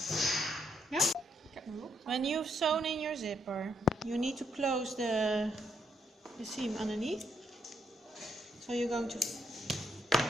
Yeah. When you've sewn in your zipper, you need to close the seam underneath. So you're going to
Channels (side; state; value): both; normal; correlation 0.76